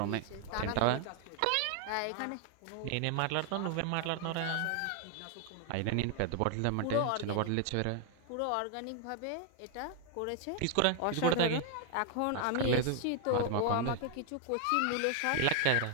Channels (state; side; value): different; both; correlation 0.00